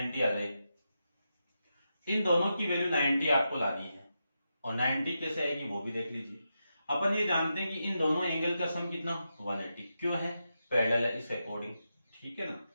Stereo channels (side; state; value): both; inverted; correlation -0.87